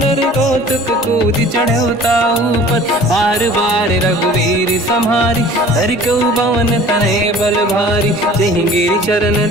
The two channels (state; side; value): normal; both; correlation 0.46